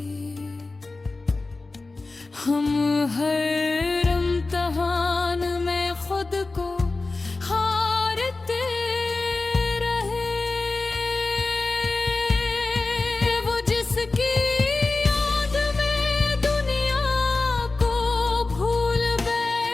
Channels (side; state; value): right; quieter; 3.5 dB